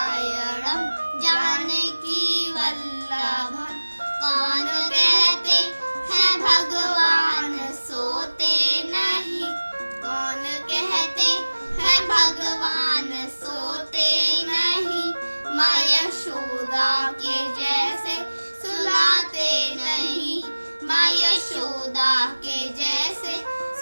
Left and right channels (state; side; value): inverted; both; correlation -1.00